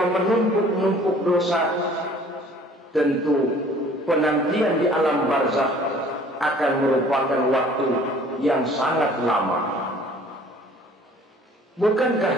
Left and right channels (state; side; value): normal; both; correlation 0.52